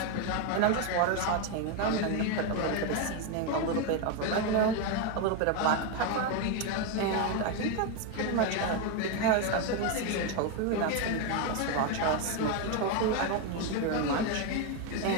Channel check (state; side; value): different; both; correlation 0.02